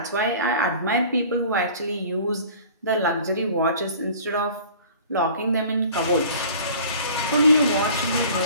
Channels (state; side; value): inverted; both; correlation -0.46